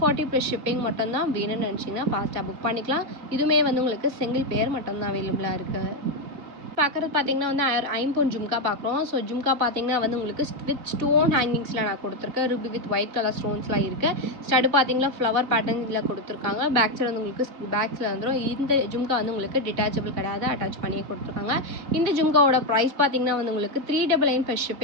ப்ளஸ் ஷிப்பிங் மட்டும்தான். வேணும்னு நினச்சிங்கன்னா ஃபாஸ்ட்டாக புக் பண்ணிக்கலாம். இதுவுமே வந்து உங்களுக்கு சிங்கிள் பேர் மட்டும்தான் அவைலபிளாக இருக்குது. பார்க்குறது பார்த்தீங்கன்னா வந்து ஐம்பொன் ஜும்கா பார்க்குறோம். ஸோ ஜும்கா பார்த்தீங்கன்னா வந்து உங்களுக்கு வித் ஸ்டோன் ஹேங்கிங்ஸில் நான் கொடுத்துருக்கேன். ரூபி வித் ஒயிட் கலர் ஸ்டோன்ஸ்லாம் இருக்குது. ஸ்டடு பார்த்தீங்கன்னா ஃப்ளவர் பேட்டர்னில் கொடுத்துருக்காங்க. பேக் சைடு வந்து உங்களுக்கு பேக்ஸில் வந்துடும். இந்த ஜும்கா வந்து உங்களுக்கு டிட்டாச்சபிள் கிடையாது, அட்டாச் பண்ணி கொடுத்துருக்காங்க. இந்த ஜும்காவோட ப்ரைஸ் பார்த்தீங்கன்னா வந்து உங்களுக்கு 399 ப்ளஸ்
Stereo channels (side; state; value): left; late; 3.6 ms